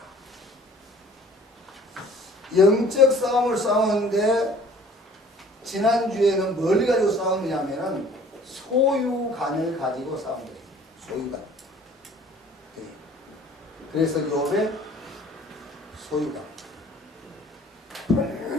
영적 싸움을 싸우는데 지난주에는 뭘 가지고 싸우느냐면은 소유관을 가지고 싸운 거예요. 소유관. 그래서 욥의 소유관.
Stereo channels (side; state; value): both; normal; correlation 0.52